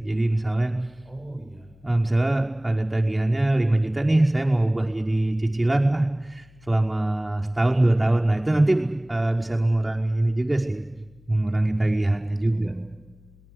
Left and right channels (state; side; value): noise; left; hum, 27 dB below the sound